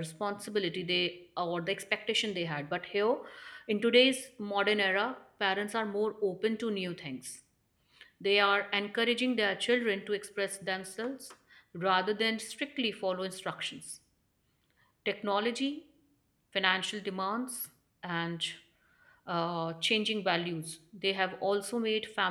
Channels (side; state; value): both; identical; correlation 1.00